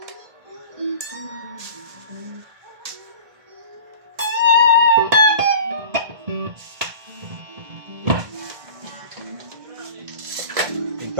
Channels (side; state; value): left; late; 1.6 ms